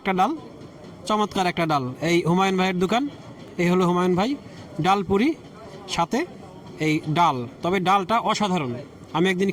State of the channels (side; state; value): both; identical; correlation 1.00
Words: ডাল, চমৎকার একটা ডাল। এই হুমায়ুন ভাইয়ের দোকান, এই হলো হুমায়ুন ভাই। ডাল পুরি সাথে এই ডাল, তবে ডালটা অসাধারণ। আমি একদিন